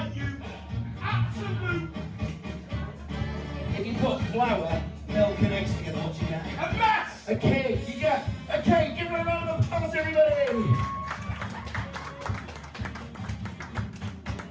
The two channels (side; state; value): both; identical; correlation 1.00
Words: you absolute If you put flour, milk, and eggs together, what you get? a mess! A cake! You get a cake! Give her a round of applause, everybody!